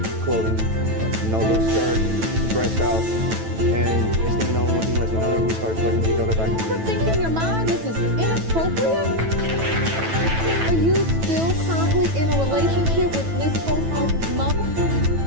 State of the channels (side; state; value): left; late; 9.1 ms